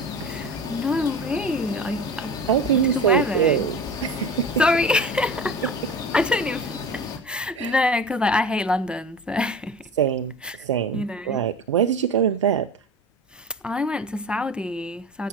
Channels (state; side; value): normal; both; correlation 0.34